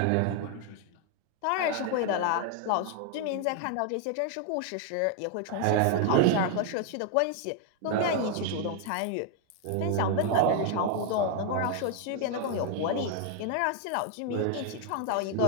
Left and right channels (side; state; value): both; different; correlation 0.00